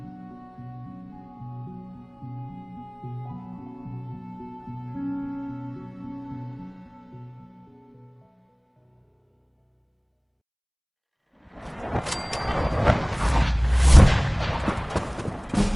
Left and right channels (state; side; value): identical; both; correlation 1.00